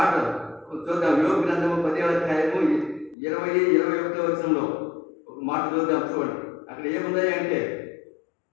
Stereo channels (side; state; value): right; drops out; at 3.2 s